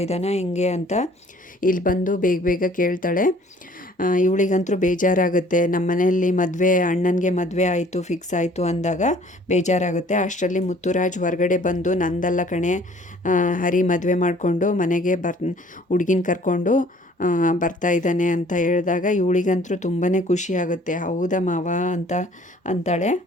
ಇದ್ದಾನ ಹೆಂಗೆ ಅಂತ ಇಲ್ಲಿ ಬಂದು ಬೇಗ ಬೇಗ ಕೇಳ್ತಾಳೆ. ಇವಳಿಗಂತೂ ಬೇಜಾರಾಗುತ್ತೆ. ನಮ್ಮ ಮನೆಯಲ್ಲಿ ಅಣ್ಣನಿಗೆ ಮದುವೆ ಆಯಿತು, ಫಿಕ್ಸ್ ಆಯಿತು ಅಂದಾಗ ಬೇಜಾರಾಗುತ್ತೆ. ಅಷ್ಟರಲ್ಲಿ ಮುತ್ತುರಾಜ್ ಹೊರಗಡೆ ಬಂದು ನಂದಲ್ಲ ಕಣೆ, ಹರಿ ಮದುವೆ ಮಾಡಿಕೊಂಡು ಮನೆಗೆ ಹುಡುಗಿನ ಕರ್ಕೊಂಡು ಬರ್ತಾ ಇದ್ದಾನೆ ಅಂತ ಹೇಳಿದಾಗ ಇವಳಿಗಂತೂ ತುಂಬಾ ಖುಷಿಯಾಗುತ್ತೆ. ಹೌದಾ ಮಾವ ಅಂತ ಅಂತಾಳೆ.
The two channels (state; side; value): normal; both; correlation 0.55